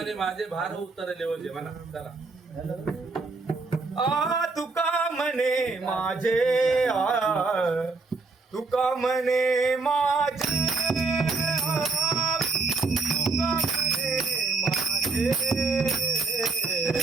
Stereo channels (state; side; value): quieter; left; 3.9 dB